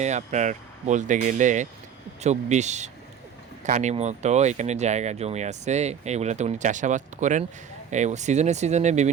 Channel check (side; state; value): left; quieter; 8.1 dB